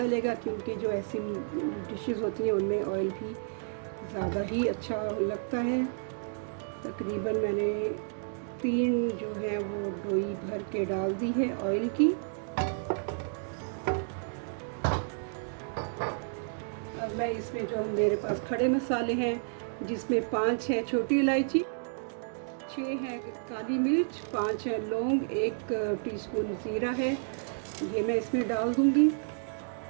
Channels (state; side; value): silent; left; digital silence